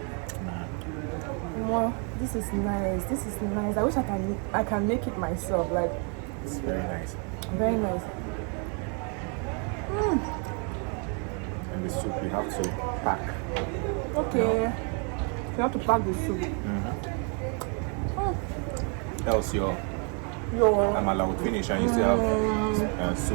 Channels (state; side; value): quieter; left; 37.9 dB